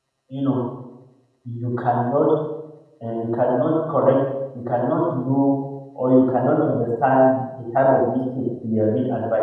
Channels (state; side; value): identical; both; correlation 1.00